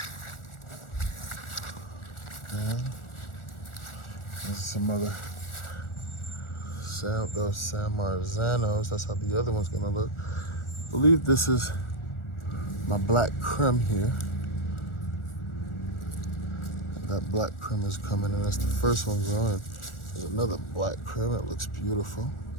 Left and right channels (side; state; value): right; late; 1.4 ms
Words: and there's some other those San Marzanos. That's how the other one's gonna look. I believe this is my black creme here. And that black creme is coming, and that's the first one growing. There's another black creme. It looks beautiful.